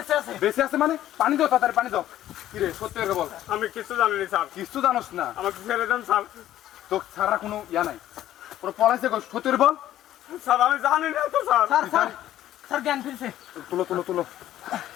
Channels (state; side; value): quieter; right; 12.8 dB